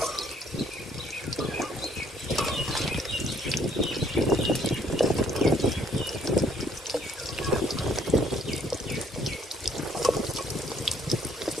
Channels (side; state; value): both; normal; correlation 0.64